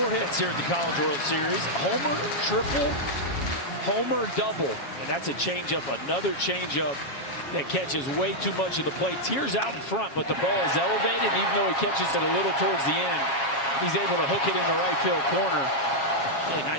hits here at the College World Series. Homer, triple, homer, double. And that's a changeup, another changeup that catches way too much of the plate. Tears out in front, but the ball is elevated. And even though he catches it a little towards the end, he's able to hook it in the right field corner. Hey,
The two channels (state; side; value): late; right; 7.3 ms